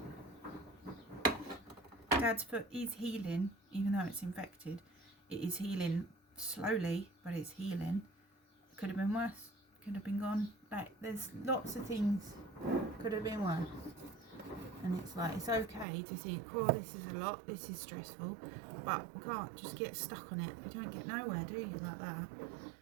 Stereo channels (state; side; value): drops out; left; at 15.9 s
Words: Dad's foot is healing, even though it's infected. It is healing slowly, but it's healing. It could have been worse. Could have been gone. Like, there's lots of things could have been worse. And it's like, it's okay to think, oh, this is a lot, this is stressful, but we can't just get stuck on it. You don't get nowhere, do you, like that?